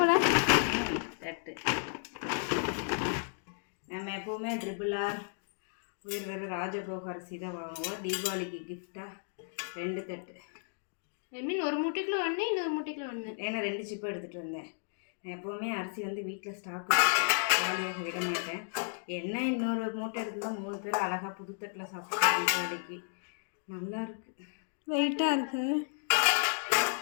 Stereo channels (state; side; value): silent; right; digital silence